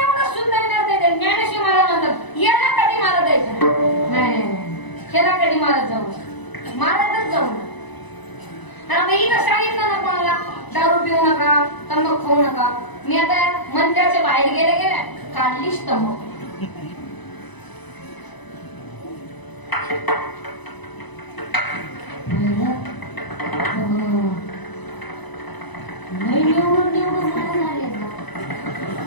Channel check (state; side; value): late; right; 1.0 ms